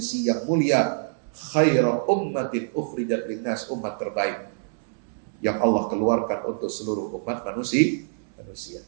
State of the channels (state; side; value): silent; left; 61 dB below the other